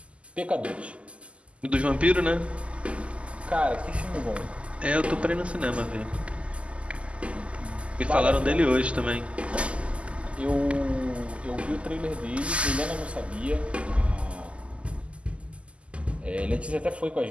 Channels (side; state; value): left; late; 0.057 ms